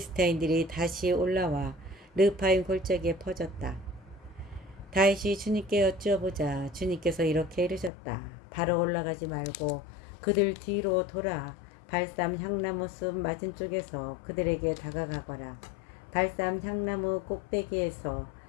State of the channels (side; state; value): right; drops out; at 7.9 s